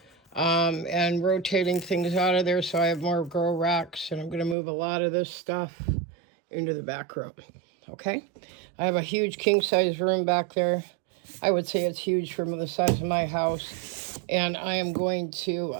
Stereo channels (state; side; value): drops out; left; at 4.5 s